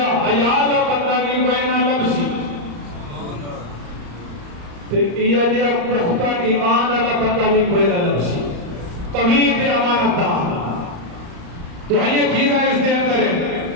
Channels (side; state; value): left; late; 34 ms